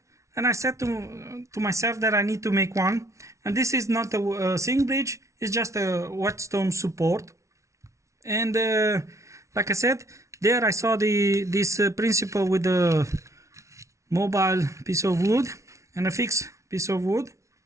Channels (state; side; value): late; left; 0.14 ms